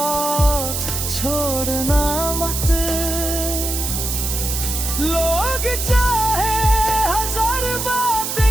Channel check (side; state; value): right; noise; hiss, 3 dB below the sound